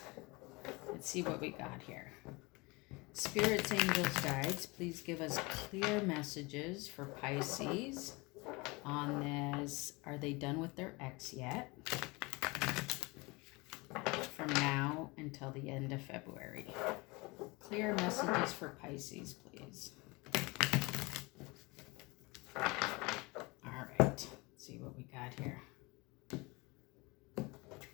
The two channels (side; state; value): right; quieter; 25.5 dB